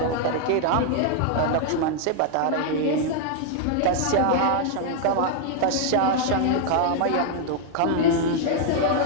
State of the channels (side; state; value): both; different; correlation 0.00